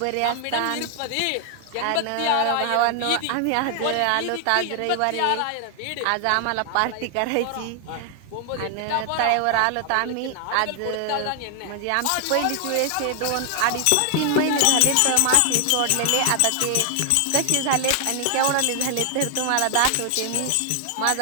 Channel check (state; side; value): different; both; correlation 0.00